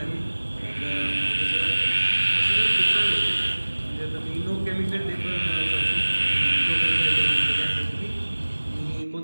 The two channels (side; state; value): both; inverted; correlation -1.00